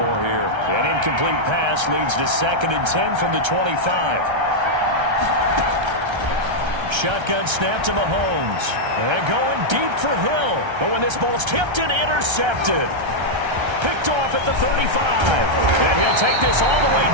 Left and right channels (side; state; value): left; late; 1.3 ms